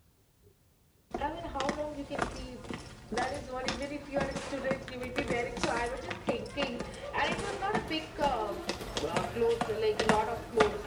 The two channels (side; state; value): both; identical; correlation 1.00